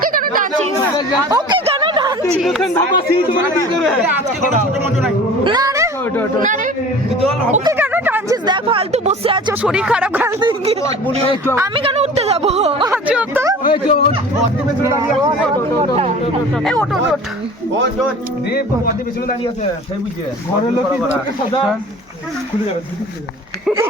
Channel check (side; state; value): both; normal; correlation 0.42